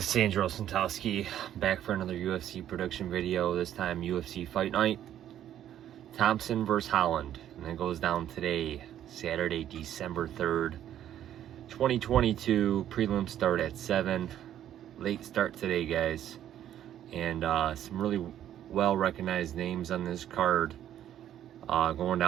It's Anjos back for another UFC production video, this time UFC Fight Night. Thompson versus Holland. And it goes down today, Saturday, December 3rd, 2022. Prelim start at 7. Late start today, guys. And some really well-recognized names on this card. Going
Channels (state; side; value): quieter; left; 11.1 dB